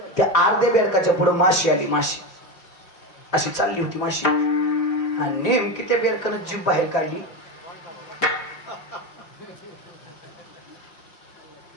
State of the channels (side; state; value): right; late; 4.9 ms